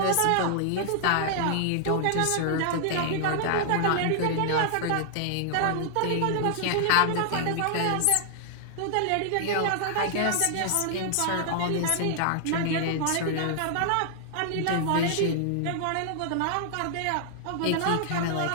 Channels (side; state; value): both; different; correlation -0.01